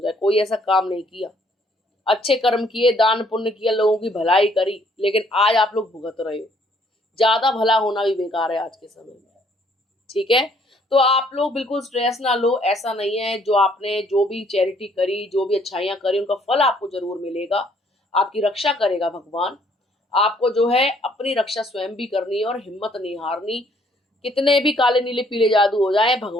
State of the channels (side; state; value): both; normal; correlation 0.64